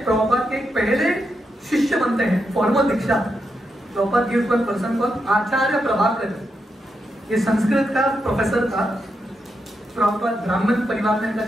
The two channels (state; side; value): normal; both; correlation 0.84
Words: प्रभुपाद के पहले शिष्य बनते हैं, formal diksha. Prabhupada gives one person called acharya Prabhakar, ये संस्कृत का प्रोफेसर था। प्रभुपाद ब्राह्मण परिवार में इनका